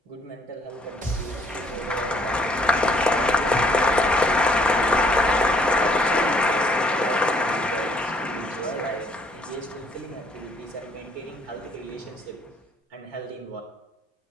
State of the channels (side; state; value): both; normal; correlation 0.64